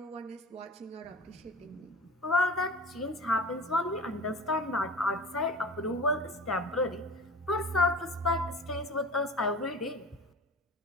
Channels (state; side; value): normal; both; correlation 0.37